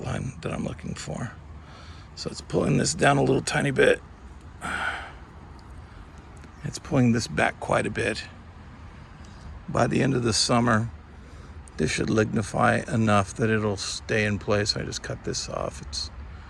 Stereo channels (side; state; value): both; identical; correlation 1.00